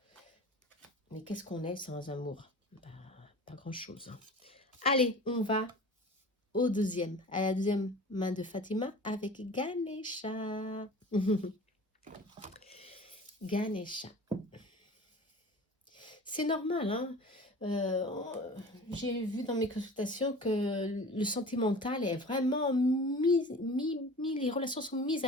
Mais qu'est-ce qu'on est sans amour? Bah, pas grand-chose, hein. Allez, on va à la deuxième main de Fatima avec Ganesha. Ganesha. C'est normal, hein. J'ai vu dans mes consultations que le sentimental est vraiment les relations sont mises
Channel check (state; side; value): normal; both; correlation 0.40